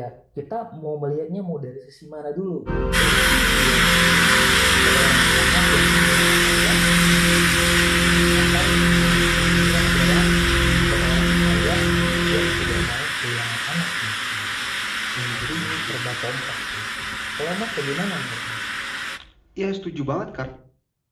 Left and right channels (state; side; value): identical; both; correlation 1.00